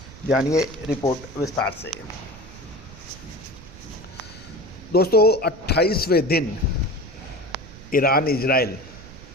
जानिए रिपोर्ट विस्तार से। दोस्तों 28वें दिन ईरान, इजराइल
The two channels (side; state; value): right; noise; rumble, 18 dB below the sound